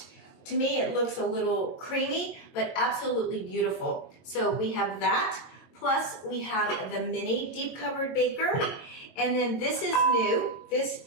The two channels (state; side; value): late; right; 22 ms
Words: To me it looks a little creamy, but absolutely beautiful. So we have that, plus we have the mini deep covered baker, and then this is new. This